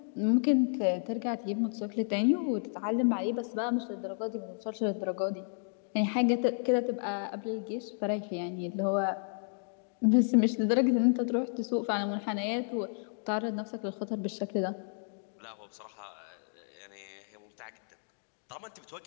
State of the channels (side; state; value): right; silent; digital silence